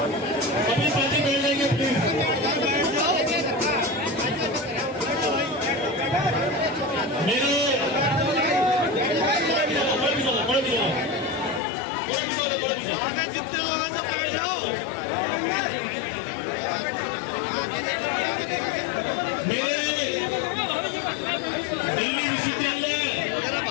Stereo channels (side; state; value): right; drops out; at 11.6 s